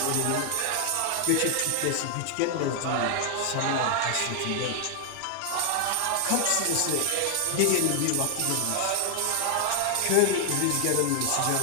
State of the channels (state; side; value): different; both; correlation 0.00